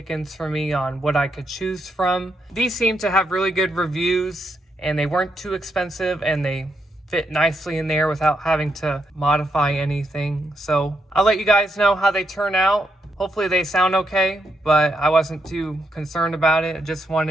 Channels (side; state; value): both; normal; correlation 0.80